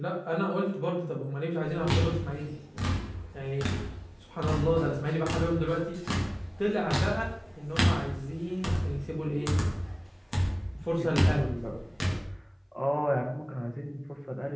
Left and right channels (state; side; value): identical; both; correlation 1.00